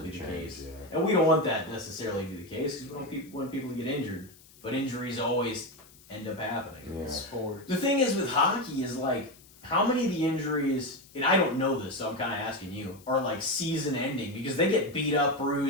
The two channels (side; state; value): left; noise; hiss, 24 dB below the sound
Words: be the Change, case. yeah. And we don't want that necessarily to be the case because we don't want people to get injured. But injuries always end up happening. Yeah. Sports. The thing is with hockey is like, how many of the injuries, and I don't know this, so I'm kind of asking you, are like season ending because they get beat up,